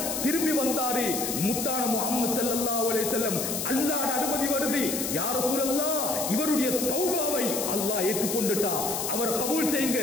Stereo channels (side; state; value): left; noise; hiss, 3 dB below the sound